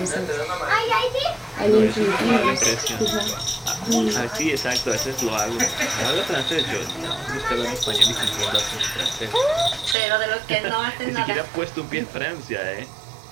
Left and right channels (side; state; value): left; drops out; at 10.0 s